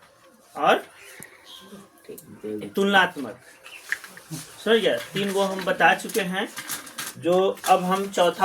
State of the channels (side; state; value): both; identical; correlation 1.00